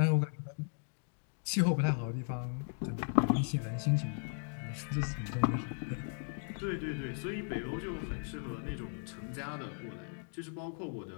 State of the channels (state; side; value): silent; right; 53 dB below the other